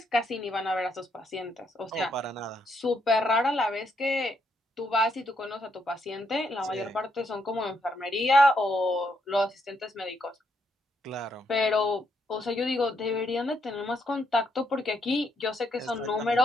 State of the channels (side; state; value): both; normal; correlation 0.76